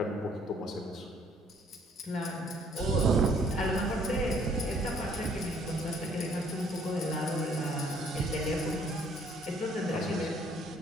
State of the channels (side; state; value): both; normal; correlation 0.62